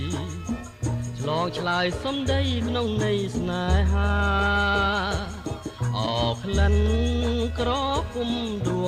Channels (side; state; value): both; identical; correlation 1.00